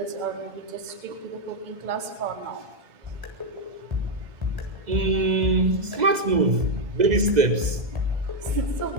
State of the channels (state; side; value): late; left; 2.0 ms